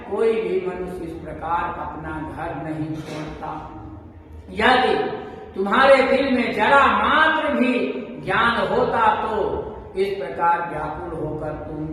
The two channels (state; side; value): identical; both; correlation 1.00